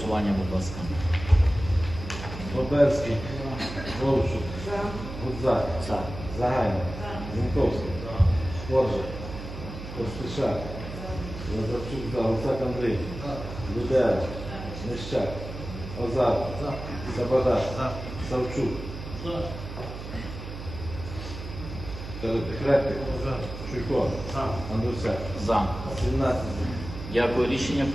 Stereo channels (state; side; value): noise; right; hum, 10 dB below the sound